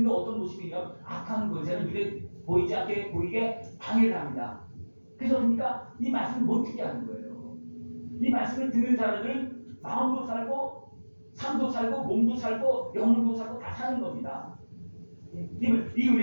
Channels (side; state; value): both; inverted; correlation -1.00